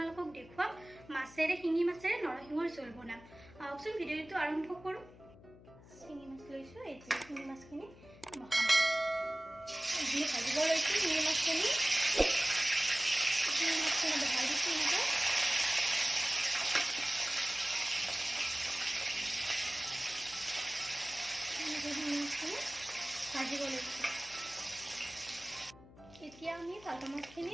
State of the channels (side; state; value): left; noise; hum, 21 dB below the sound